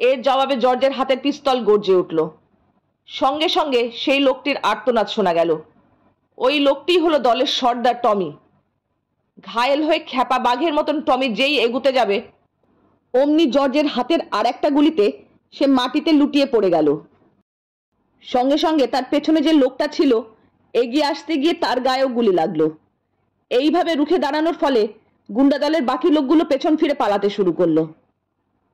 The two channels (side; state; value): both; identical; correlation 1.00